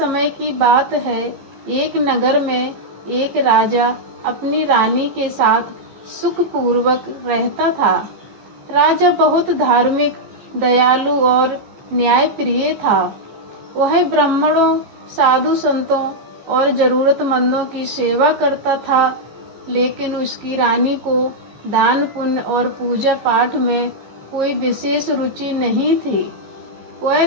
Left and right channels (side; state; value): left; late; 15 ms